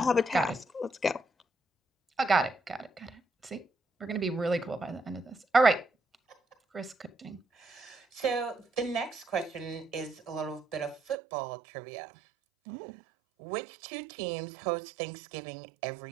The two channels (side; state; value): left; drops out; at 11.2 s